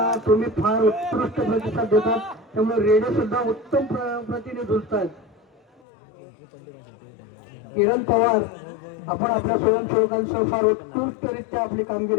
तुम्ही फार उत्कृष्ट प्रतिसाद देतात, त्यामुळे रेडे सुद्धा उत्तम प्रतीने झुंजतात. किरण पवार, आपण आपल्या स्वयंसेवकांसह फार उत्कृष्टरित्या आपली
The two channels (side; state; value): right; drops out; at 5.8 s